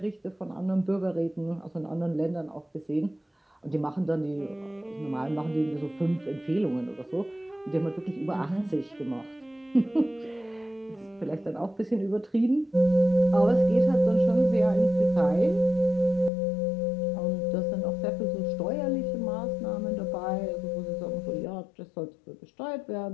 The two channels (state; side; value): drops out; right; at 16.3 s